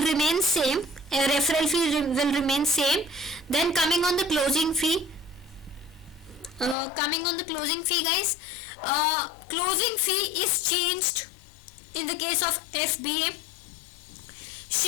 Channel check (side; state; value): right; drops out; at 6.8 s